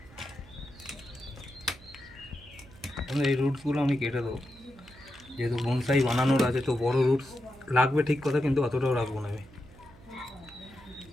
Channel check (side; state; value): right; noise; hum, 22 dB below the sound